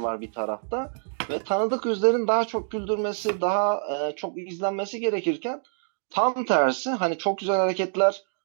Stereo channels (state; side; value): silent; left; digital silence